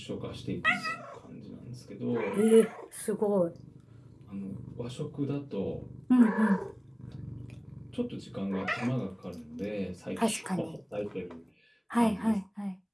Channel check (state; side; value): identical; both; correlation 1.00